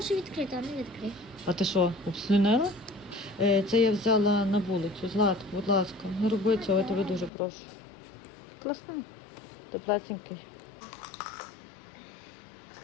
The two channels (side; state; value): right; drops out; at 7.3 s